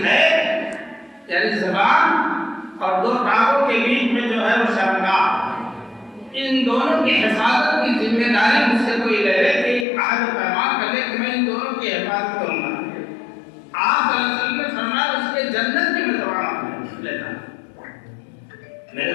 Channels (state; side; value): drops out; right; at 9.9 s